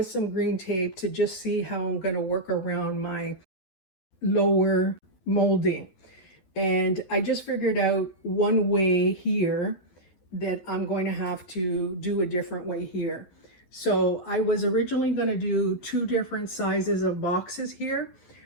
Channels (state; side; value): late; right; 12 ms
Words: some green tape to just see how I'm going to work around my lower molding. And I just figured out one way here that I'm going to have to do a different way here. So I was originally going to do 2 different sizes of boxes here,